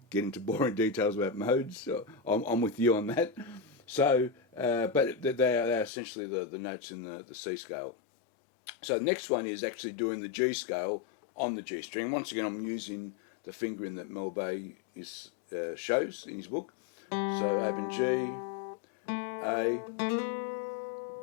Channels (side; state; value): right; drops out; at 5.9 s